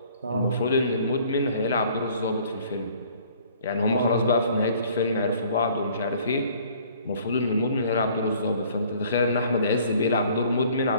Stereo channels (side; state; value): both; inverted; correlation -0.56